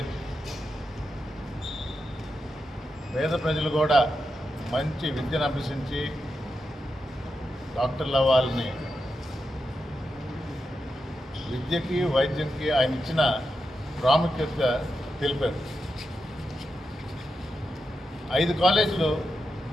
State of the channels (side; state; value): both; normal; correlation 0.87